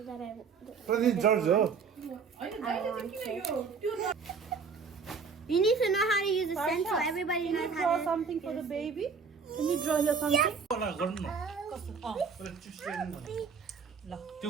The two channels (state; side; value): quieter; left; 5.5 dB